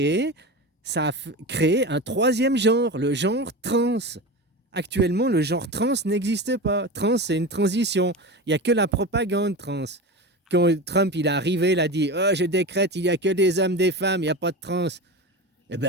un troisième genre, le genre trans. Actuellement, le genre trans n'existe pas. Trans, c'est une transition. Il n'y a que la propagande trans. Quand Trump il est arrivé, il a dit oh, je décrète, il n'y a que des hommes, des femmes, il n'y a pas de trans. Eh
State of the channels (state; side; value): normal; both; correlation 0.26